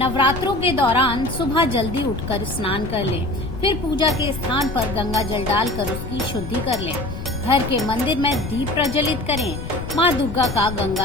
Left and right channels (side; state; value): left; noise; rumble, 8 dB below the sound